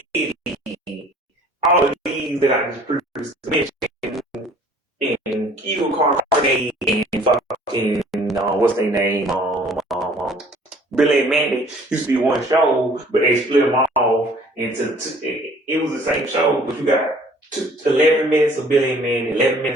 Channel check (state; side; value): normal; both; correlation 0.54